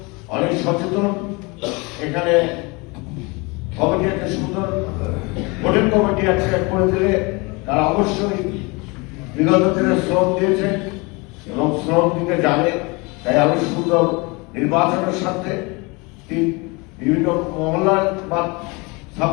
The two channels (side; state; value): right; quieter; 27.2 dB